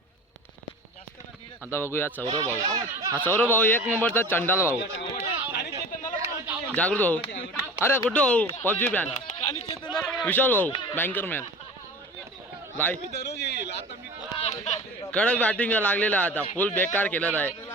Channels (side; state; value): both; normal; correlation 0.37